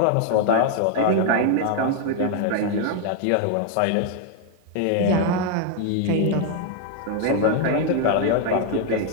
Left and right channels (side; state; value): both; different; correlation 0.00